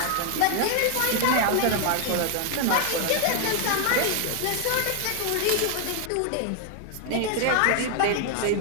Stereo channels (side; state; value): both; different; correlation 0.00